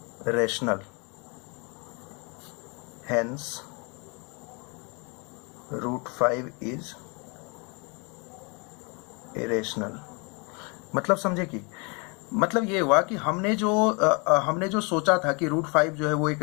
rational, hence root 5 is irrational। मतलब समझे कि मतलब ये हुआ कि हमने जो सोचा था कि रूट 5 जो है वो एक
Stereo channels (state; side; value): quieter; right; 31.9 dB